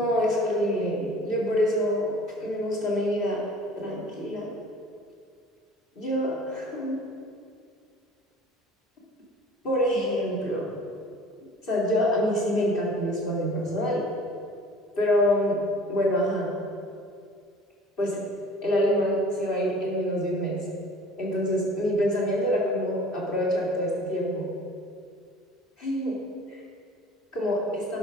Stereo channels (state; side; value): normal; both; correlation 0.46